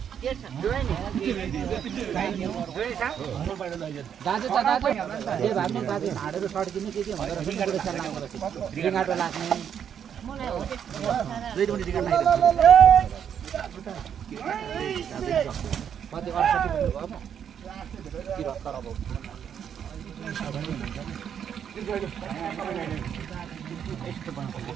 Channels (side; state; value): left; quieter; 8.4 dB